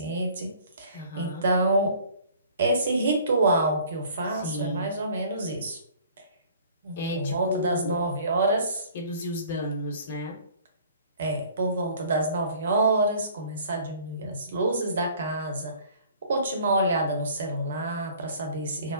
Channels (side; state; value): both; inverted; correlation -0.52